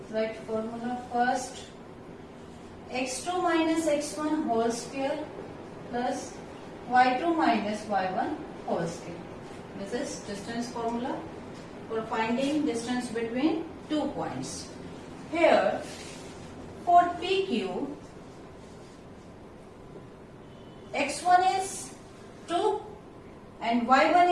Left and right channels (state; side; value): identical; both; correlation 1.00